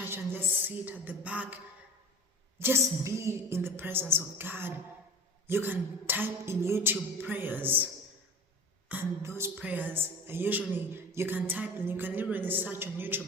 and just sit at the back. Just be in the presence of God. You can type in YouTube prayers. And those prayers are usually, you can type and you can literally search on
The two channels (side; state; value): both; normal; correlation 0.37